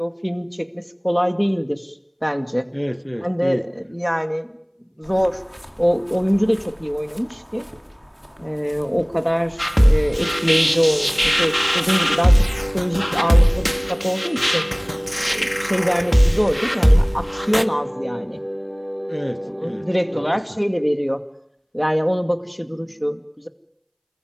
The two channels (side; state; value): both; identical; correlation 1.00